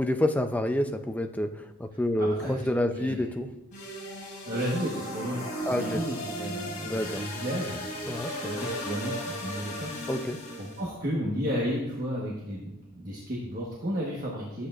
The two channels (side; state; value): both; normal; correlation 0.69